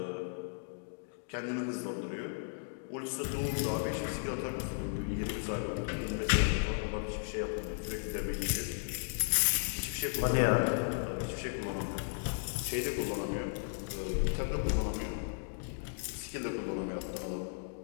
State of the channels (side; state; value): right; silent; digital silence